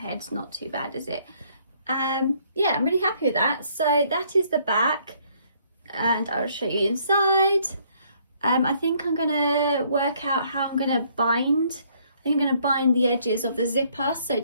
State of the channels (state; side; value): inverted; both; correlation -0.65